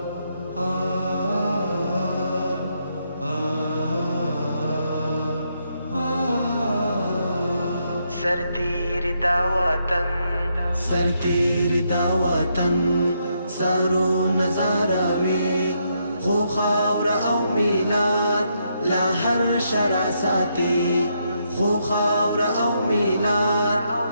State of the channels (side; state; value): both; inverted; correlation -0.78